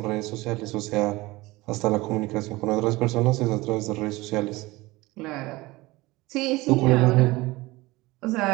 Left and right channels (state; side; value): quieter; left; 20.8 dB